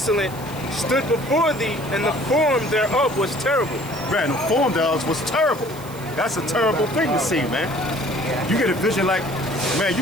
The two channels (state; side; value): noise; right; hiss, 19 dB below the sound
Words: stood before thee, and the form thereof was terrible. Man, the form thereof was terrible. That's a terrible thing to see, man. You get a vision like, man, you